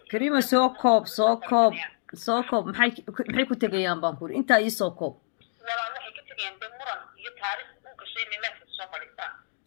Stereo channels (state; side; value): silent; right; digital silence